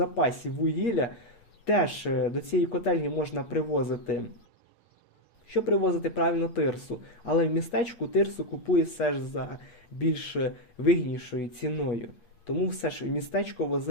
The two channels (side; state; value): right; late; 8.5 ms